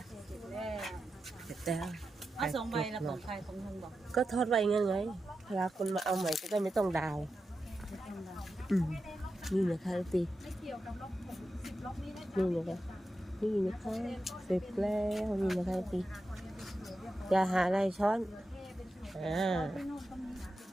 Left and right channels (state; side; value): normal; both; correlation 0.90